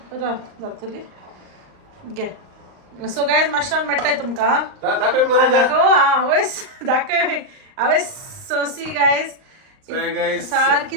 जातली घे सो गायज माश्यान मेळटाय तुमकां दाखय मरे दाखव आवयस दाखय आवयस सोसी गायज गाइस सारकी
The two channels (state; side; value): late; left; 38 ms